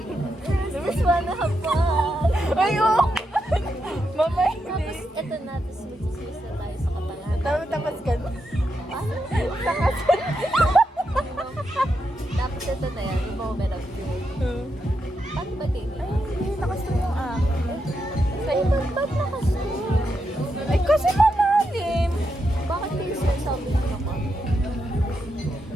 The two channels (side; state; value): both; normal; correlation 0.84